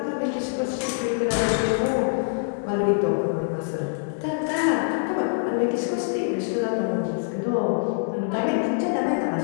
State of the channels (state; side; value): silent; right; digital silence